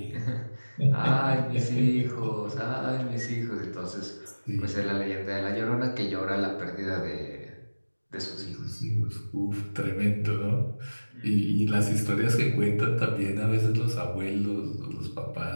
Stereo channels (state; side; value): inverted; both; correlation -1.00